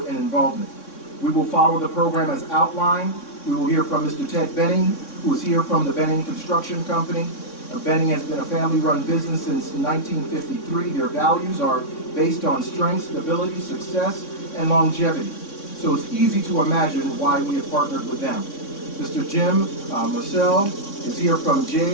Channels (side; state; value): right; late; 3.6 ms